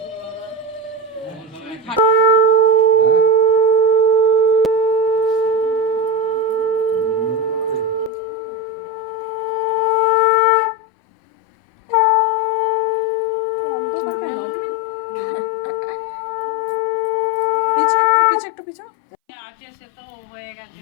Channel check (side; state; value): right; drops out; at 8.1 s